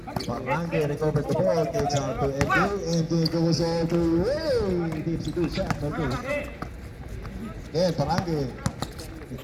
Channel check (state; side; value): identical; both; correlation 1.00